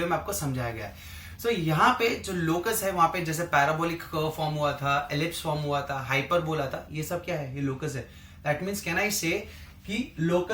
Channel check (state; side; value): identical; both; correlation 1.00